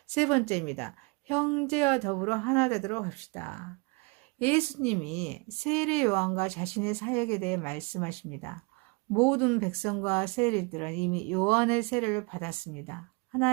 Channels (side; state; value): left; quieter; 29.9 dB